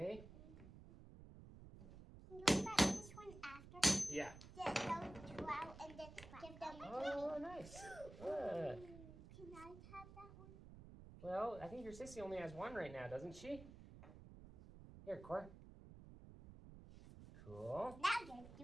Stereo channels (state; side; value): noise; right; rumble, 15 dB below the sound